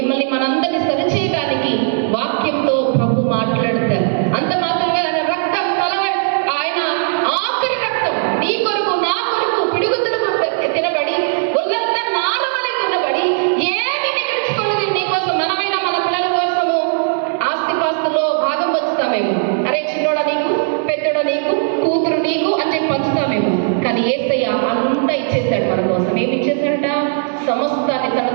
మనందరినీ సరిచేయడానికి వాక్యంతో ప్రభు మాట్లాడతారు. అంత మాత్రమే ఆయన రక్తం ఆయన ఆఖరి రక్తం నీ కొరకు నా కొరకు పిడుగుతులకు తినబడి ఒళ్ళంతా నాలుమలై తినబడి ఏమి మిగిల్చుకోలేదు నీ కోసం. మనమైనా మన పిల్లల కోసము ఆస్తిపాస్తులో భాగం పంచుతామేమో, అరే చిన్నోడ నీకు, పెద్దోడ నీకు, కూతురు నీకు అని చెప్పి పంచుతామేమో. కానీ యేసయ్య అంతా ఇచ్చేశాడు మన కోసం. ఏమి ఇచ్చేశాడట? సమస్తాన్ని తన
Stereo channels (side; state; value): left; silent; digital silence